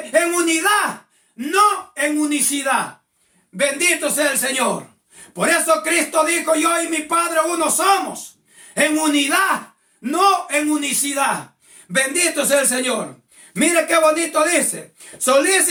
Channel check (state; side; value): identical; both; correlation 1.00